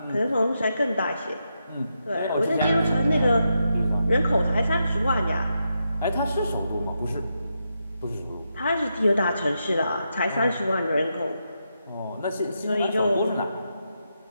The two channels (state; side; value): inverted; both; correlation -0.84